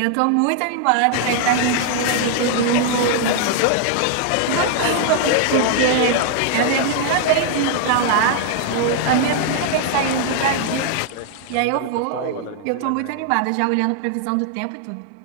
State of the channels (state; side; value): different; both; correlation 0.00